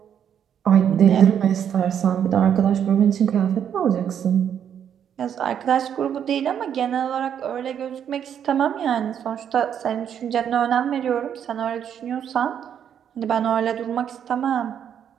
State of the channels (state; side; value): quieter; left; 8.8 dB